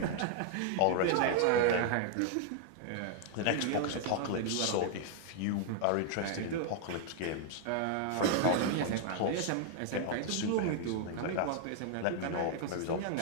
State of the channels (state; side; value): different; both; correlation 0.00